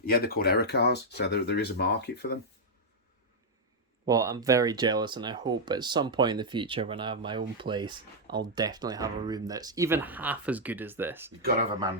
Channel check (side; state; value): both; normal; correlation -0.04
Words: they're called error cars, so there is a market for them. Well, I'm very jealous, and I hope at some point in the future when I have my own place, I'll definitely have a room that's even half as good as this. You've got to have a